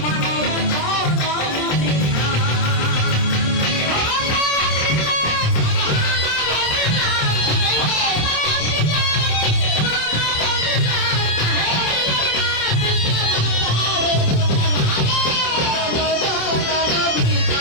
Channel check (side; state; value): right; late; 27 ms